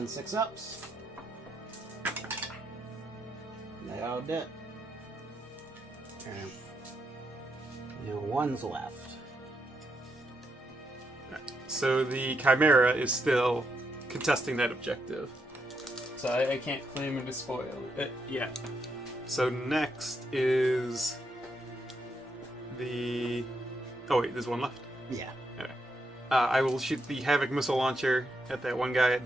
6-ups. They all did. Okay. Now one's left. So the Chimera is still contesting that objective. So I can't claim and despoil it yet. So next is the... Oh wait, there's one left. Yeah. Okay. I will shoot the Havoc missile launcher at that one guy.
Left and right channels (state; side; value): normal; both; correlation 0.80